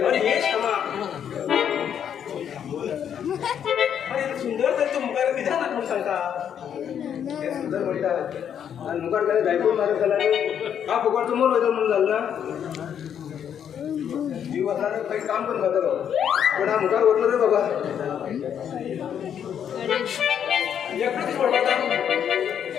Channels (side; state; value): right; quieter; 8.8 dB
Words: अरे हे श्यामा अरे सुंदर तर तू मुखार विधान ना कोण सांगता हे सुंदर म्हणतात आणि मुखार काय जायको मारत झाला हा फुकटचं मोल होतं म्हणून झालं ना जीव असणार काही काम पण करतो पण हा मुखार ओढलं रे बाबा एकटंच पडता